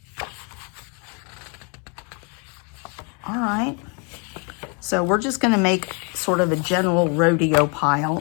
All right. So we're just going to make sort of a general rodeo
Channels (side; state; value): right; quieter; 35.4 dB